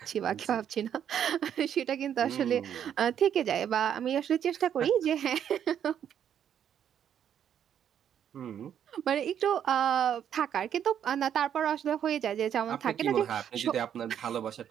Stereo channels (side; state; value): left; quieter; 9.3 dB